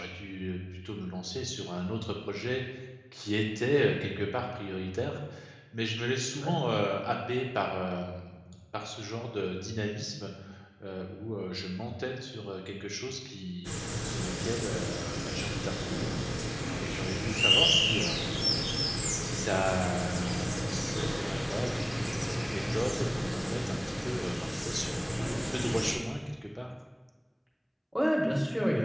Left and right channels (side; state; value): both; identical; correlation 1.00